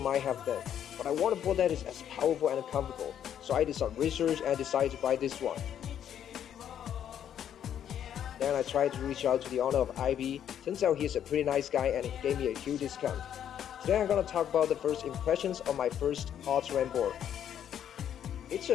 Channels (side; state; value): right; quieter; 9.7 dB